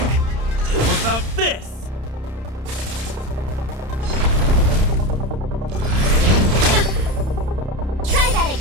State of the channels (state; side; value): late; left; 31 ms